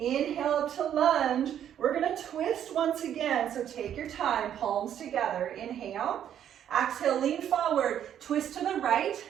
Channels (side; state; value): left; quieter; 10.0 dB